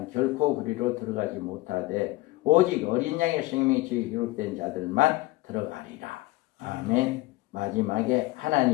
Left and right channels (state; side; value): quieter; right; 19.8 dB